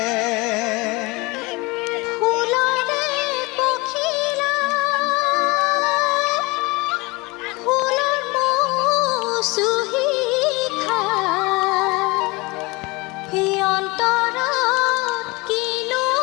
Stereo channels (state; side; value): quieter; right; 24.5 dB